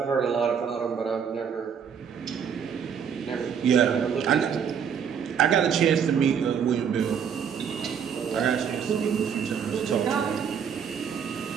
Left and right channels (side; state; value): left; quieter; 7.5 dB